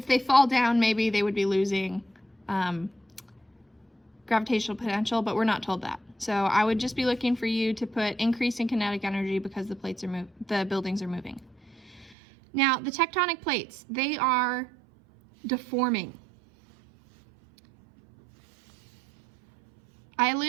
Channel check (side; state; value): left; drops out; at 12.2 s